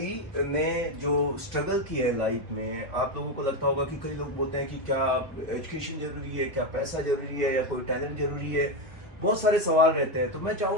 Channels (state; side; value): normal; both; correlation 0.09